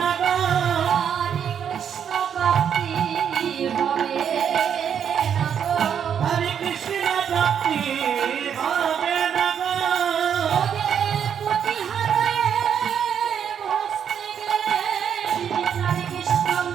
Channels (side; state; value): left; quieter; 8.2 dB